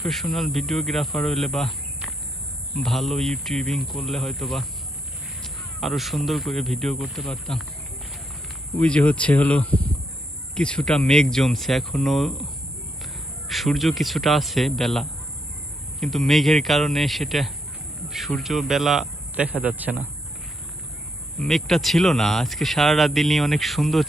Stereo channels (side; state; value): both; normal; correlation 0.77